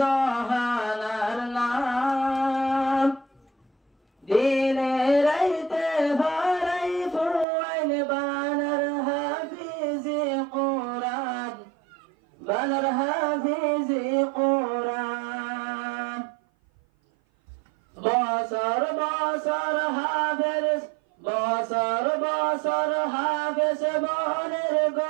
নাম দিনে রাইতে বারাই ফুয়াইন বানার হাফিজি কোরআন বানার হাফিজি কোরআন বছর বছর হাফেজ বছর বছর হাফেজ বনের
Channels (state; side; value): drops out; left; at 7.5 s